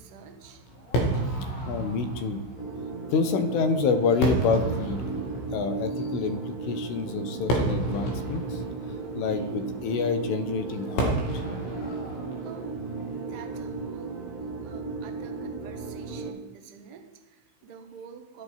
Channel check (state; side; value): late; right; 16 ms